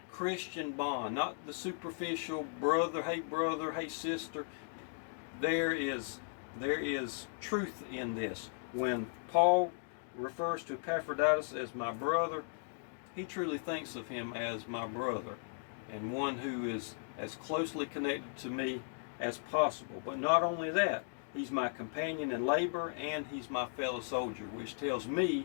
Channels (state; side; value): silent; right; digital silence